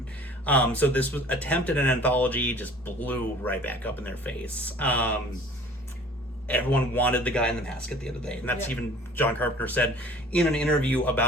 So this was attempted an anthology, just blew right back up in their face. Everyone wanted the guy in the mask at the end of the day. And that's even John Carpenter said in an interview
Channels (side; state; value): both; normal; correlation 0.49